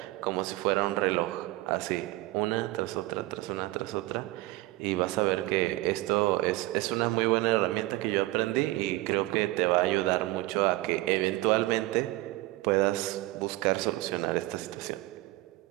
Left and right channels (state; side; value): quieter; left; 19.0 dB